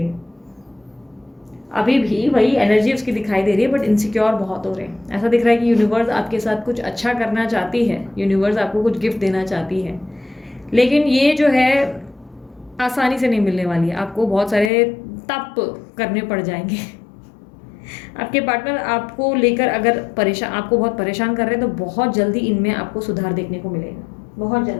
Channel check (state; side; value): drops out; right; at 14.7 s